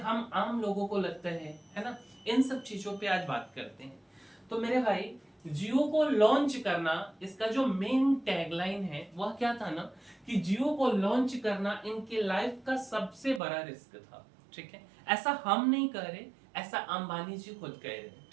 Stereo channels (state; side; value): drops out; left; at 13.4 s